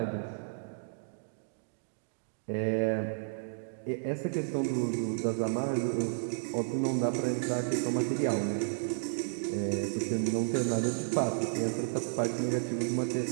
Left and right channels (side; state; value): left; silent; digital silence